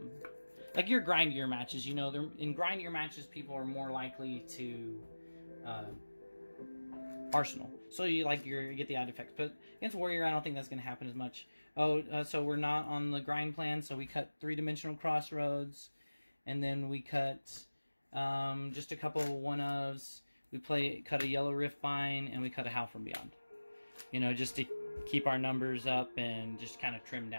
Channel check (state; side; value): inverted; both; correlation -1.00